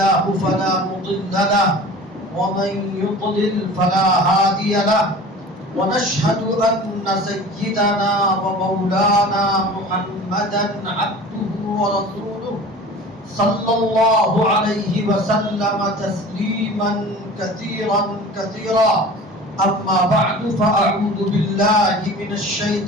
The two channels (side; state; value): both; normal; correlation 0.40